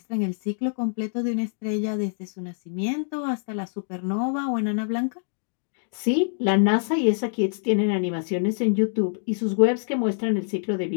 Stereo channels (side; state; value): right; silent; digital silence